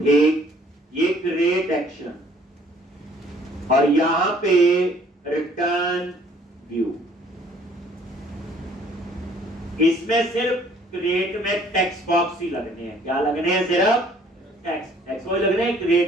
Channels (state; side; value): normal; both; correlation 0.58